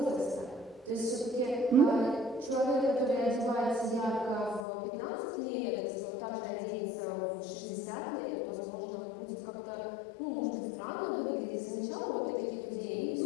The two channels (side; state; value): right; drops out; at 4.7 s